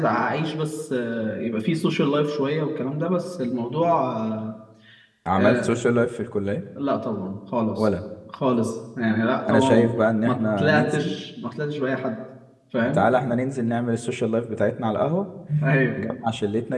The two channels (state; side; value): identical; both; correlation 1.00